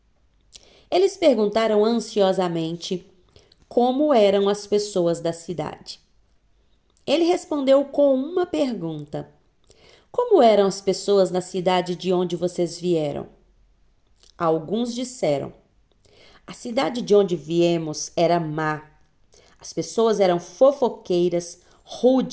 Eles perguntaram ansiosamente como eram as pessoas da cidade. Ele respondeu com uma pergunta: como eram as pessoas na cidade de onde vocês vieram? Alguns disseram: a cidade de onde viemos era má. As pessoas eram fofoqueiras,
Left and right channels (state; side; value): identical; both; correlation 1.00